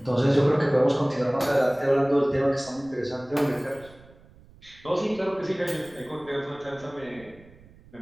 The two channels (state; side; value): noise; right; rumble, 24 dB below the sound